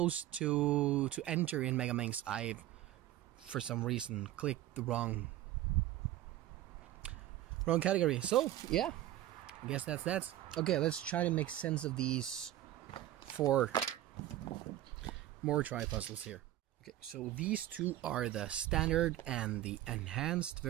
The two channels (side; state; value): left; quieter; 13.8 dB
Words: to enter in Megaminx. I, for some reason, clicked the wrong category. So yeah, I guess that's that. Okay, let's try to make sense of these 4 moretry puzzles here. Okay, so these 2 are the standard and the enhanced